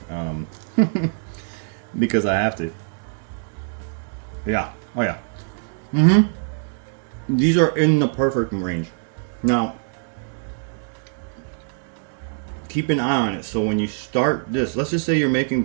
because I have to. Yeah. Oh yeah. These are in the perfect range. Now, keep an eye on it. So when you start this, let's just say you're making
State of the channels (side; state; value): left; silent; digital silence